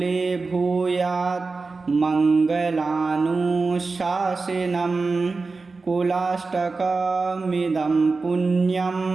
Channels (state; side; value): quieter; left; 4.0 dB